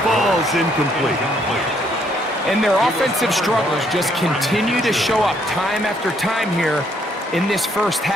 falls incomplete. And their offensive struggles just continue to show up time after time here in this first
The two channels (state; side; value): normal; both; correlation 0.69